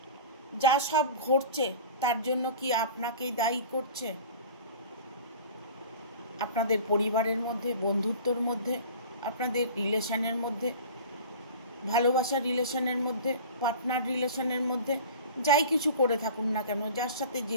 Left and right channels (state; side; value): inverted; both; correlation -0.39